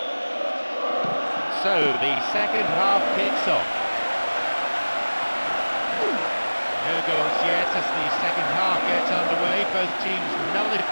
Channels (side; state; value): both; inverted; correlation -1.00